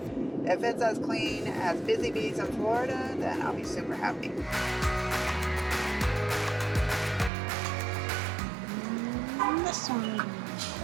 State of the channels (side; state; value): left; drops out; at 7.3 s